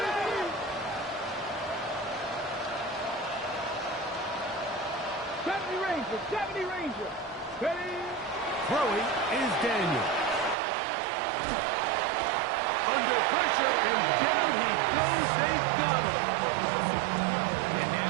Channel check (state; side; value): drops out; left; at 10.6 s